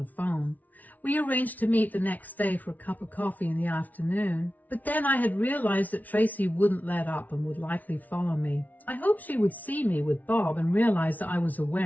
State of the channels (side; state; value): right; late; 0.076 ms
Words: phone. We arranged to meet the next day for a cup of coffee in the afternoon, but then I had realized that Tracy wouldn't let up and would likely follow me. I hoped she would see me with Bob and realize that I was